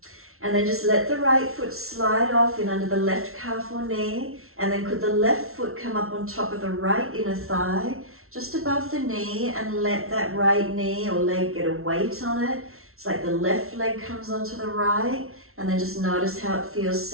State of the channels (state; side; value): late; left; 0.62 ms